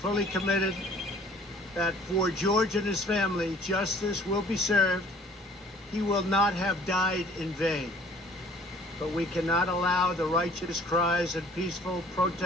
committed that for George and his family, justice will be served. He will not have died in vain. But we cannot allow the righteous cries and peaceful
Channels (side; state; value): both; normal; correlation 0.54